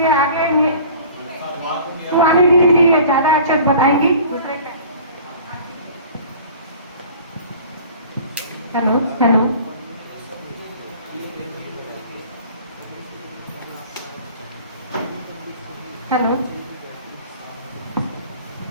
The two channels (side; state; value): both; inverted; correlation -0.45